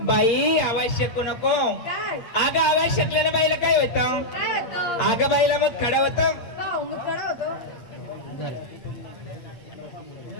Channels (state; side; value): late; right; 8.6 ms